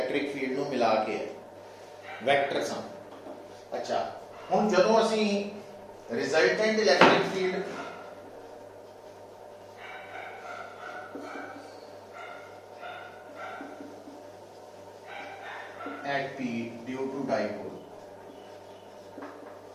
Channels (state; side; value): identical; both; correlation 1.00